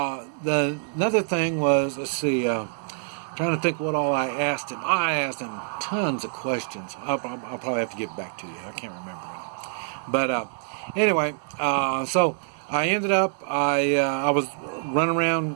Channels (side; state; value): left; silent; digital silence